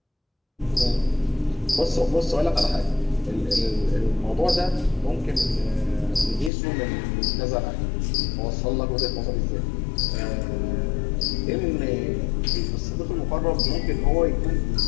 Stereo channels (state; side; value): drops out; right; at 6.5 s